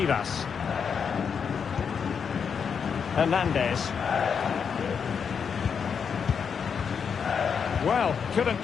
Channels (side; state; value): right; quieter; 6.6 dB